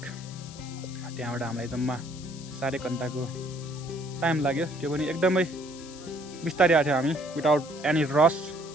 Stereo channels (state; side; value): noise; left; hiss, 17 dB below the sound